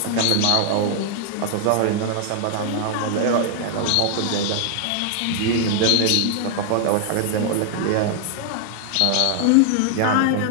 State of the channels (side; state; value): both; different; correlation 0.00